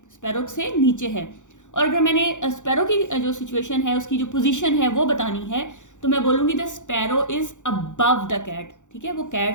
स्पैरो से नीचे है। और अगर मैंने स्पैरो की जो सिचुएशन है, उसकी जो पोजीशन है वो बतानी है, तो मैं बोलूँगी the sparrow is above the cat, ठीक है, वो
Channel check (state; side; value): late; right; 0.85 ms